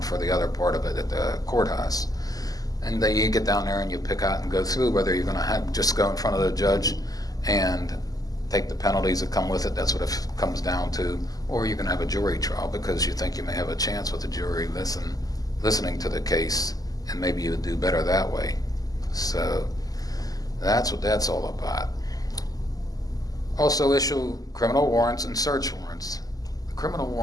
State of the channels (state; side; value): late; right; 0.17 ms